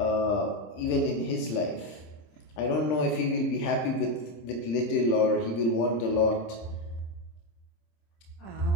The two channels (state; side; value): late; right; 26 ms